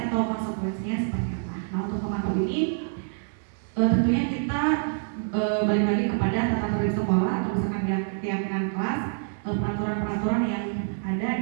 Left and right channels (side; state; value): left; silent; digital silence